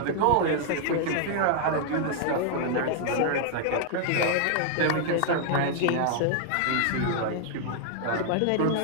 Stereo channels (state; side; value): different; both; correlation -0.01